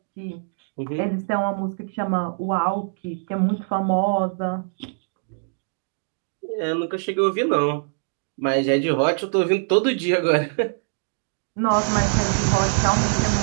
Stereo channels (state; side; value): silent; left; digital silence